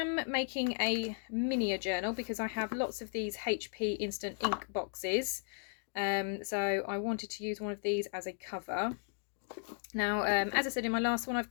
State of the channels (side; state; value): right; silent; 54 dB below the other